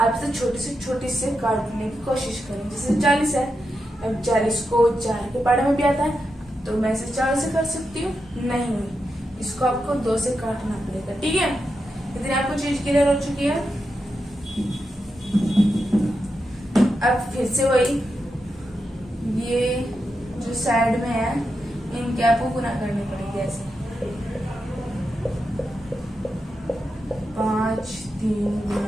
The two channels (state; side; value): normal; both; correlation 0.87